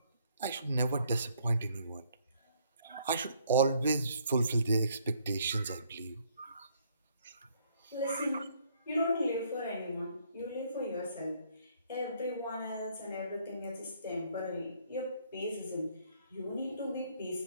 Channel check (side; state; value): both; inverted; correlation -0.66